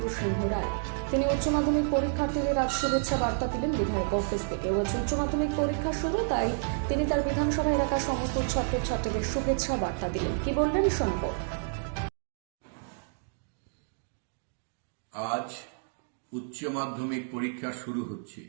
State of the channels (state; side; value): silent; left; digital silence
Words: সিংহ রায়। তিনি উচ্চ মাধ্যমিক পরীক্ষার্থীদের আজ শুভেচ্ছা বার্তা দিলেন বিধায়ক অফিস থেকে। আজ উচ্চ মাধ্যমিক পরীক্ষা শুরু, তাই তিনি তার বিধানসভা এলাকার সমস্ত ছাত্রছাত্রীদের শুভেচ্ছা বার্তা দিলেন। কি বললেন শোনাব। আজ উচ্চ মাধ্যমিক পরীক্ষা শুরু হচ্ছে।